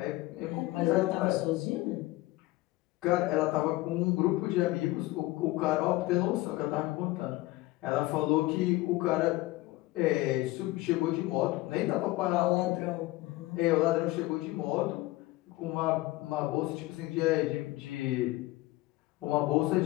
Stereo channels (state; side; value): quieter; right; 19.1 dB